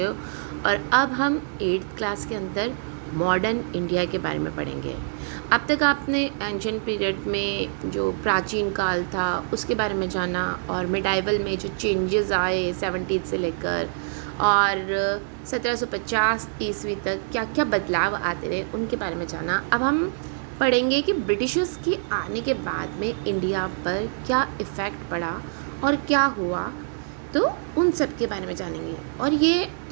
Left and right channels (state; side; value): silent; left; digital silence